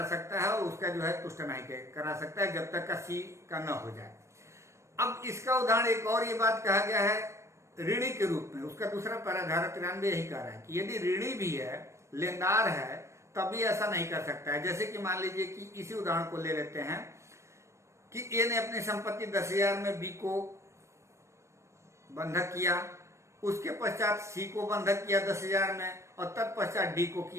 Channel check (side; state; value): left; late; 0.14 ms